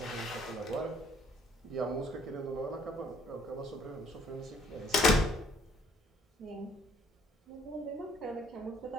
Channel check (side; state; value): both; normal; correlation 0.63